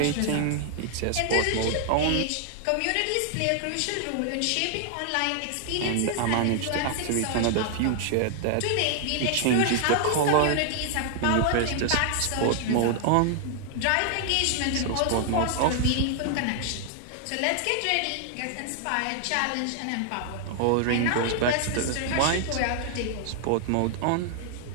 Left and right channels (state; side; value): different; both; correlation 0.00